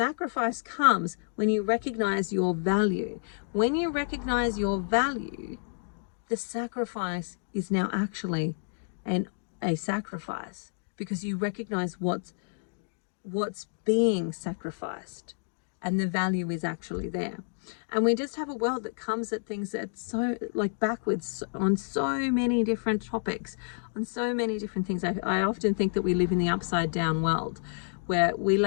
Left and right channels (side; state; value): right; silent; digital silence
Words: comes when you recognize your value. When you recognize your value, the sacrifice is now actually a sacrifice, because you recognize what's being sacrificed, and the value is actually there. And we just have a world that comes at things that's so backwards on so many different topics, on so many different things. I often think that we live in the upside down world, where we